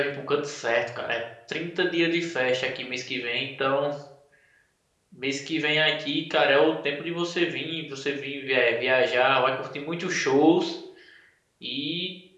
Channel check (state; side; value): identical; both; correlation 1.00